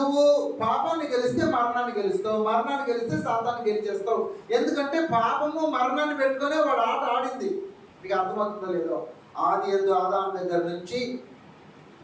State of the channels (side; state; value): both; identical; correlation 1.00